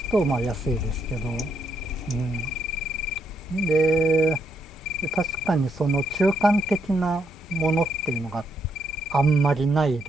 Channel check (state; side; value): normal; both; correlation 0.76